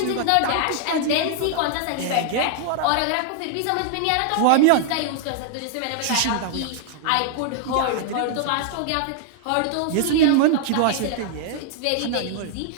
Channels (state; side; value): different; both; correlation 0.00